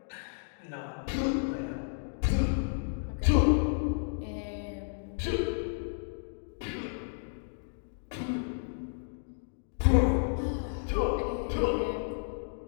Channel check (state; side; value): silent; right; digital silence